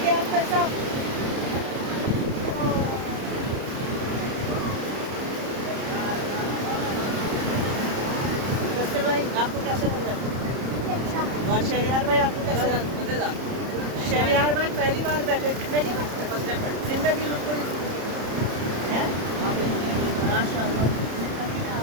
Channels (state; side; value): late; left; 30 ms